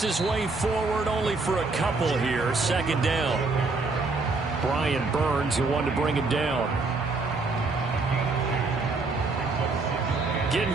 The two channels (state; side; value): quieter; left; 3.7 dB